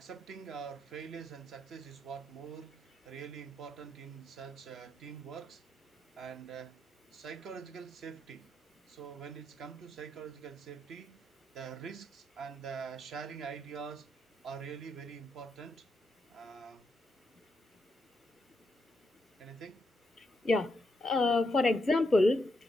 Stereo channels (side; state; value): both; normal; correlation 0.81